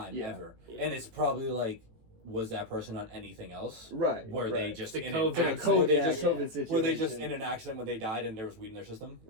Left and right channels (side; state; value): left; late; 18 ms